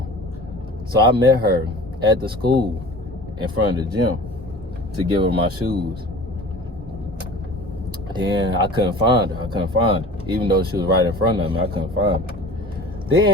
So I met her at the school in front of the gym to give her my shoes. Then I couldn't find her. Even though she was right in front of me, I couldn't find her.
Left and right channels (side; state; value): both; normal; correlation 0.41